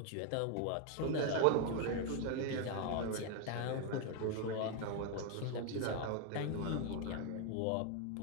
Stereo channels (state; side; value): different; both; correlation 0.01